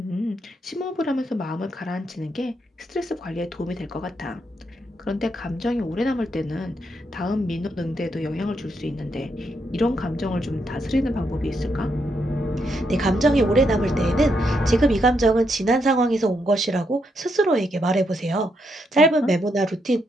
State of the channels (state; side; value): normal; both; correlation 0.79